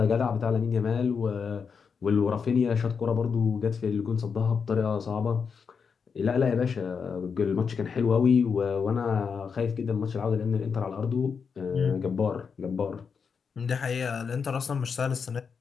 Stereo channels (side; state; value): right; quieter; 6.0 dB